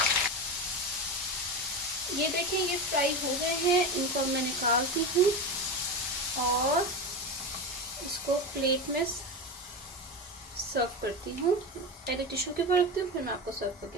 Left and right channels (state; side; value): normal; both; correlation 0.21